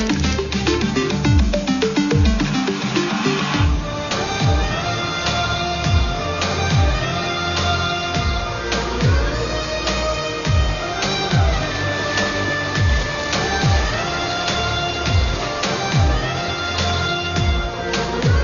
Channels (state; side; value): identical; both; correlation 1.00